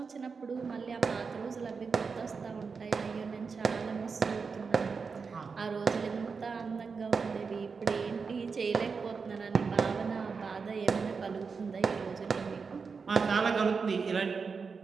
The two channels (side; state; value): left; quieter; 5.2 dB